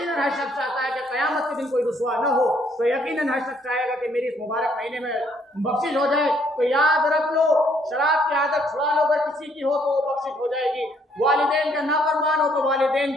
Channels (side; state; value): both; normal; correlation 0.67